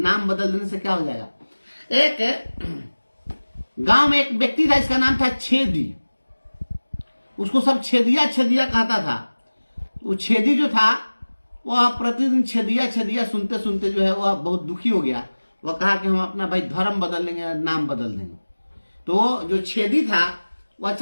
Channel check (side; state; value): both; inverted; correlation -1.00